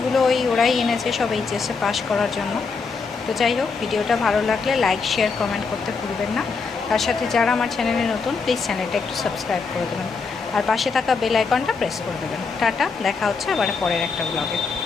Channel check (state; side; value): quieter; right; 4.8 dB